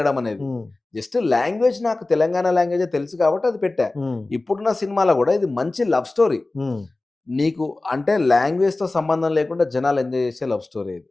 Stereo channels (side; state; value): right; quieter; 3.1 dB